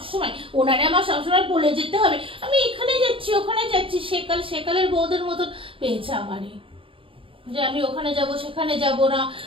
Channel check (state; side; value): late; left; 0.26 ms